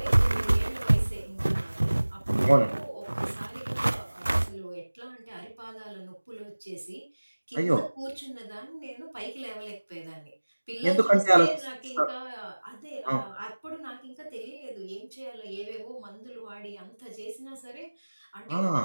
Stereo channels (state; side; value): inverted; both; correlation -1.00